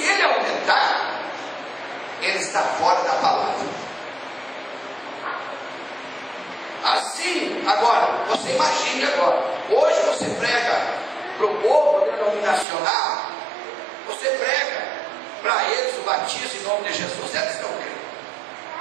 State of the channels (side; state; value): left; drops out; at 12.7 s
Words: ele aumentar, ele está fora da palavra. Assim, agora, você imagine agora, hoje você prega para o povo denominacional, você prega para eles o batismo em nome de Jesus, eles não creem.